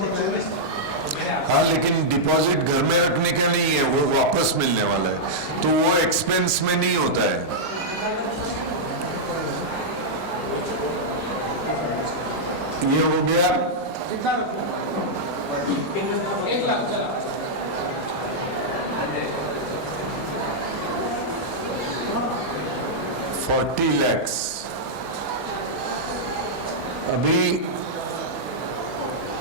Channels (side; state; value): right; late; 7.5 ms